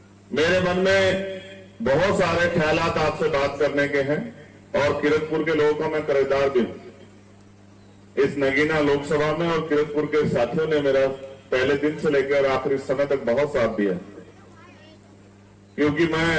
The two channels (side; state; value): both; identical; correlation 1.00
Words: मेरे मन में बहुत सारे ख्यालात आपसे बात करने के हैं और किरतपुर के लोगों का मैं कर्जदार भी हूं। इस नगीना लोकसभा में और किरतपुर के साथियों ने मेरा पहले दिन से लेकर आखिरी समय तक बहुत साथ दिया, क्योंकि मैं